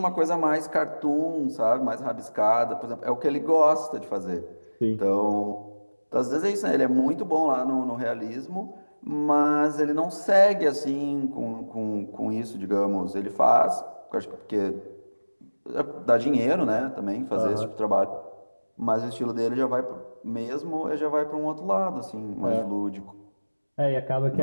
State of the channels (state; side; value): inverted; both; correlation -1.00